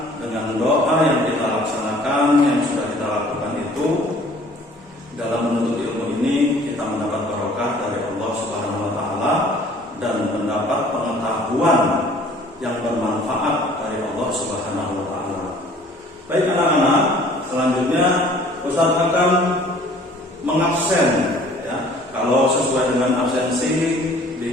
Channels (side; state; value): both; normal; correlation 0.53